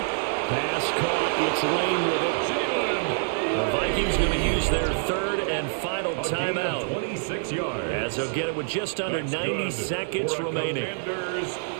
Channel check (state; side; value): silent; left; digital silence